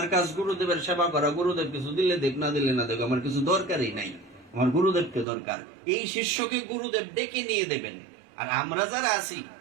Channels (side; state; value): left; drops out; at 5.2 s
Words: কাজ গুরুদেবের সেবা করা, গুরুদেব কিছু দিলে দেখ, না দিলে না দেখ, আমার কিছু দরকারই নাই, আমার গুরুদেবকে দরকার। এই শিষ্যকে গুরুদেব ডেকে নিয়ে দেবেন। আর আমরা যারা আছি